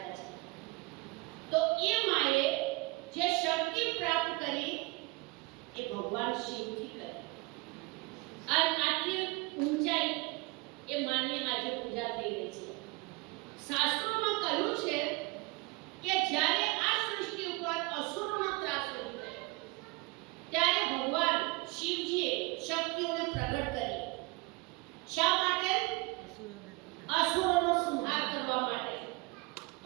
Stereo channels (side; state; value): left; quieter; 24.8 dB